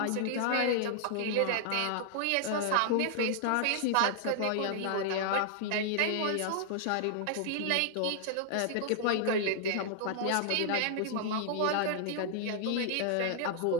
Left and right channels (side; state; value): both; different; correlation -0.01